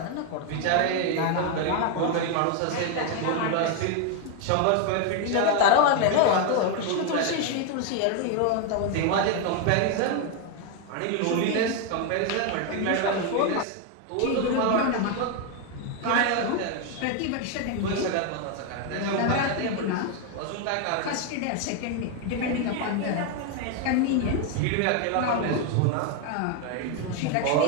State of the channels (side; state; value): both; different; correlation 0.01